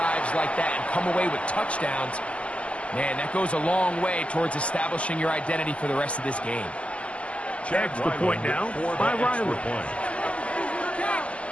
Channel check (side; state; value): right; late; 0.059 ms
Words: like that and come away with touchdowns. Man, that goes a long way towards establishing your identity for the rest of this game. Extra point now by Riley.